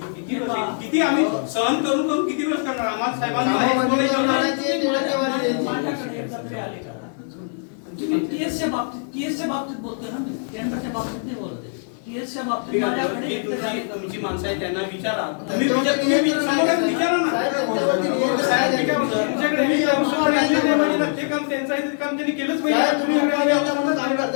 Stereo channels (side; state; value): right; silent; 58 dB below the other